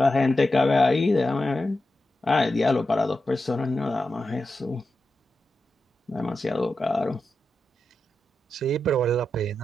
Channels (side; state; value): both; normal; correlation 0.90